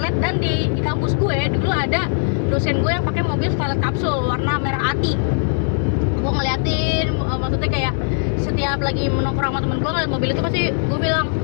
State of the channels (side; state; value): right; silent; digital silence